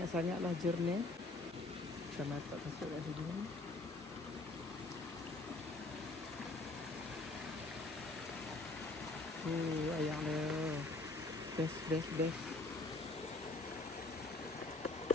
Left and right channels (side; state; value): right; quieter; 3.2 dB